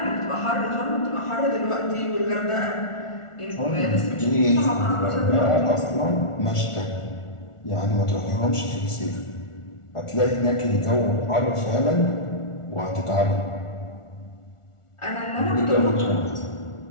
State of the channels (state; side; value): late; right; 1.4 ms